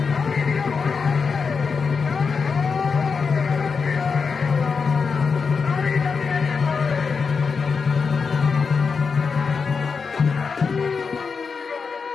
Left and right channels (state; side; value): quieter; right; 5.3 dB